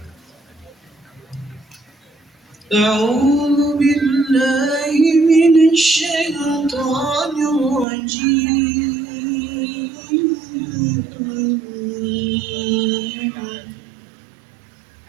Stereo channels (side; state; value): left; drops out; at 7.9 s